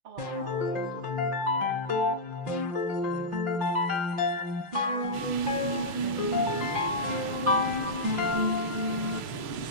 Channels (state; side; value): late; left; 6.5 ms